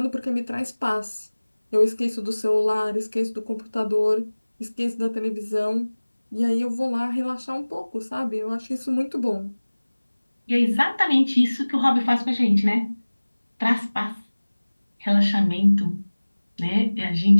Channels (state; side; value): inverted; both; correlation -1.00